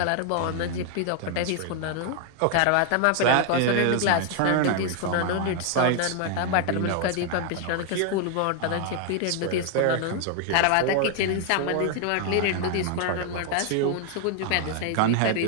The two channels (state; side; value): different; both; correlation 0.00